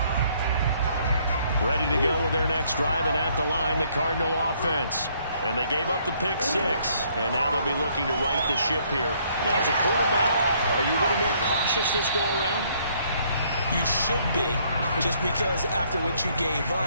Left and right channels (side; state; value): both; inverted; correlation -0.66